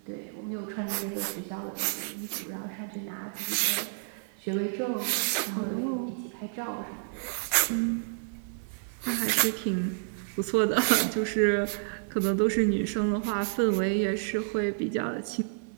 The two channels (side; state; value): left; silent; digital silence